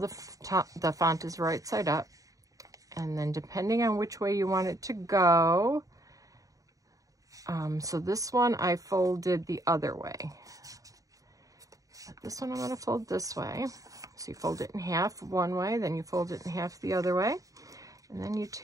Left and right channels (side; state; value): left; late; 0.16 ms